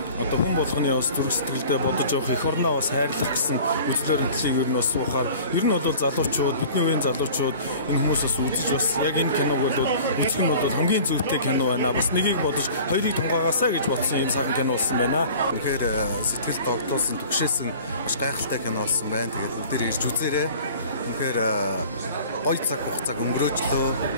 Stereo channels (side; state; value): both; inverted; correlation -0.45